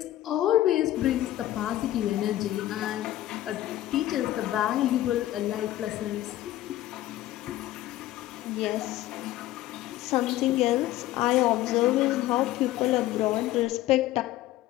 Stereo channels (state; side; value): quieter; right; 14.6 dB